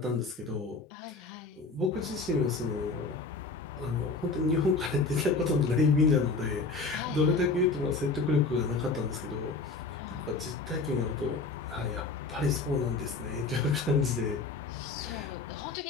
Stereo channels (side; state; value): right; quieter; 3.9 dB